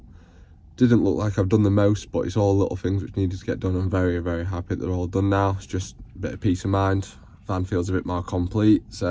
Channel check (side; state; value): both; identical; correlation 1.00